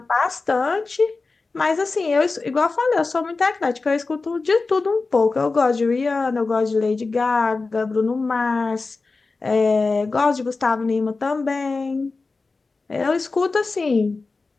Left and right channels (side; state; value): right; quieter; 3.9 dB